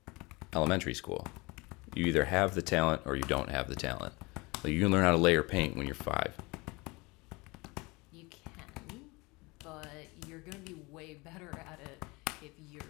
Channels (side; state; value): right; quieter; 25.2 dB